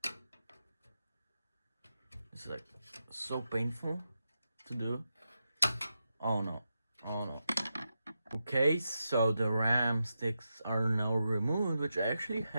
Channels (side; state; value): both; inverted; correlation -0.88